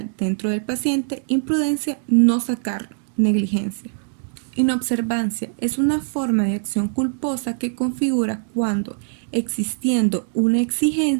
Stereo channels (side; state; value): left; silent; digital silence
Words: dentro del paciente, imprudencia, no sacarlo, negligencia. Inobservancia es una forma de acción culposa que configura cuando, existiendo una